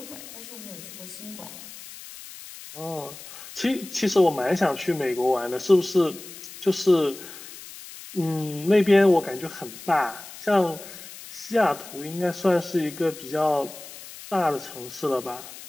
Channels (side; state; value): left; noise; hiss, 15 dB below the sound